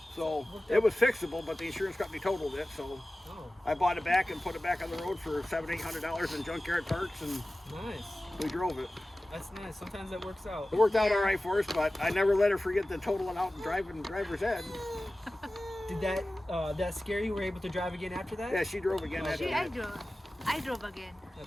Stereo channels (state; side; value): normal; both; correlation 0.96